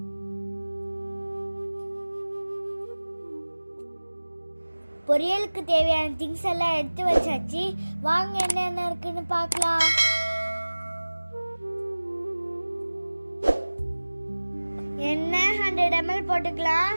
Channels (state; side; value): inverted; both; correlation -1.00